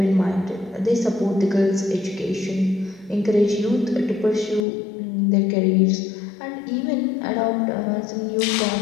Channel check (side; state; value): right; drops out; at 4.7 s